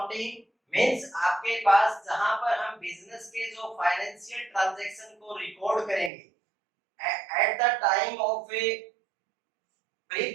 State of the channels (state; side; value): drops out; left; at 6.1 s